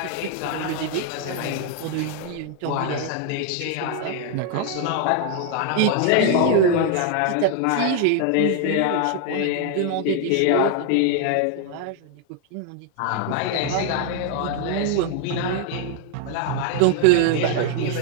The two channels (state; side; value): different; both; correlation 0.00